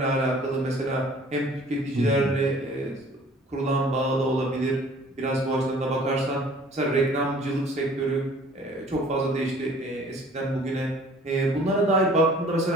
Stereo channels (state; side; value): normal; both; correlation 0.52